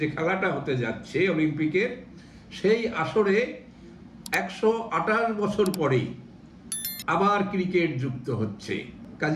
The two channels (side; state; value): both; identical; correlation 1.00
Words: যে খেলাটা হতে যাচ্ছে অলিম্পিকের, সেই আসরে 128 বছর পরেই আবার ক্রিকেট যুক্ত হচ্ছে।